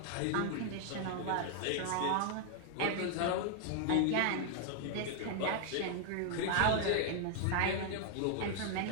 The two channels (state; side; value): different; both; correlation 0.00